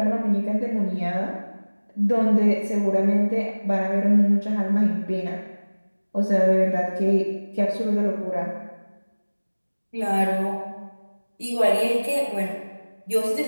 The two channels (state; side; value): inverted; both; correlation -1.00